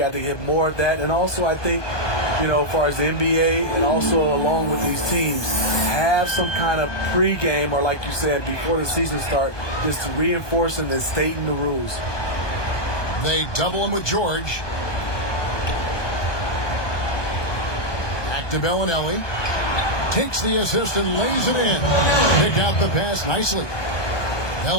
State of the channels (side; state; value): right; late; 1.2 ms